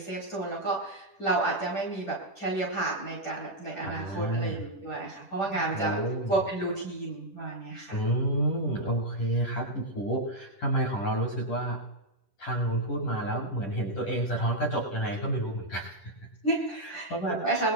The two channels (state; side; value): late; right; 10 ms